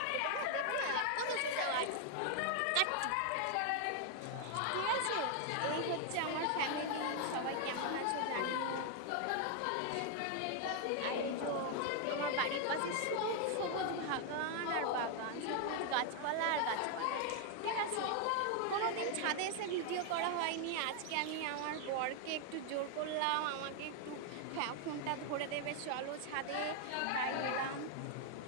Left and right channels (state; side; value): different; both; correlation 0.00